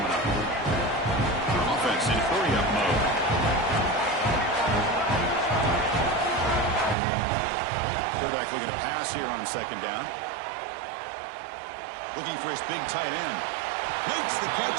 up. Offense in hurry-up mode. Quarterback looking to pass here on 2nd down. Looking for his big tight end. Makes the catch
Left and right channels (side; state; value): left; drops out; at 7.0 s